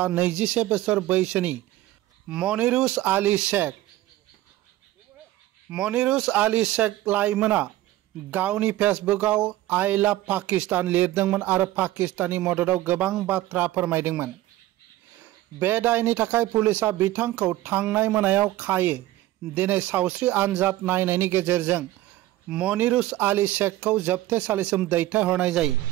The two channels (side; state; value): left; quieter; 15.7 dB